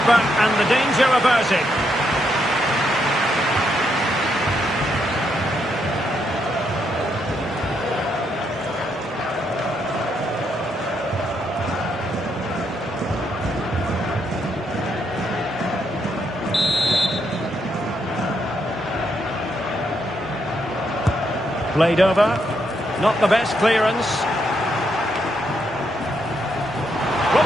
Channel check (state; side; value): normal; both; correlation 0.78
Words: and the danger averted. Played over. Not the best clearance. Will